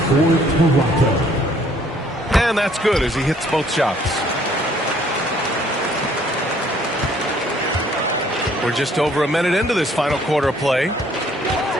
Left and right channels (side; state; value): both; normal; correlation 0.61